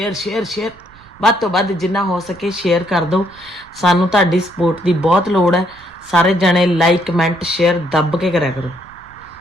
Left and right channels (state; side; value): noise; right; rumble, 26 dB below the sound